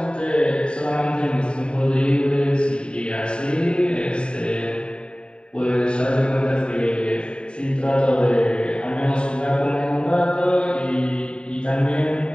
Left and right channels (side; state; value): right; late; 0.051 ms